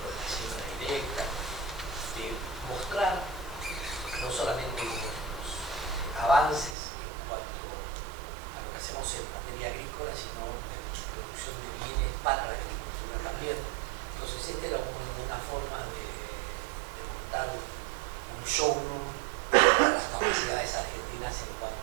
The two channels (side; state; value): left; drops out; at 6.8 s